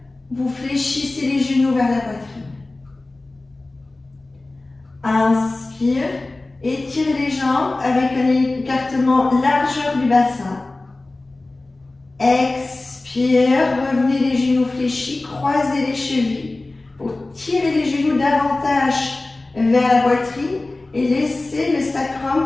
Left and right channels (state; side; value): quieter; right; 3.0 dB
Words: vous fléchissez les genoux vers la poitrine. Inspire, étirez les jambes avec un écartement largeur du bassin. Expire, revenez les genoux fléchis, croisez les chevilles pour tirer les genoux davantage vers la poitrine et laissez le sacrum